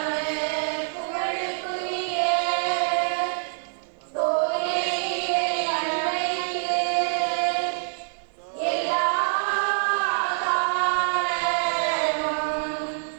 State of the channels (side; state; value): left; silent; digital silence